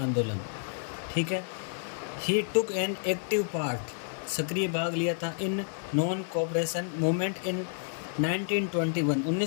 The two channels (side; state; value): right; silent; 58 dB below the other